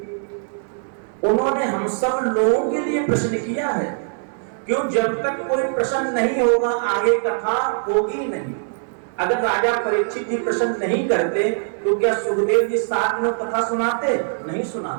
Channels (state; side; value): silent; left; digital silence